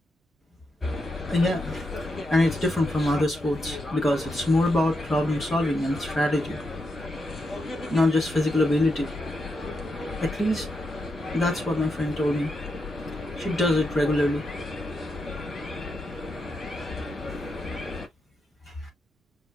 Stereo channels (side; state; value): both; normal; correlation 0.84